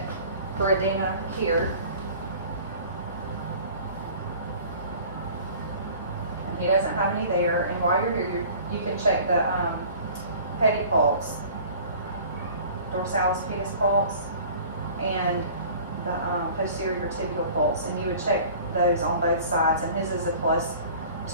for edema here. And he doesn't have any there. And while you're here, you can check the pedipulse, dorsalis pedis pulse, and the posterior tibial pulse. And you would check those on both sides. And his is a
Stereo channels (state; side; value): inverted; both; correlation -0.45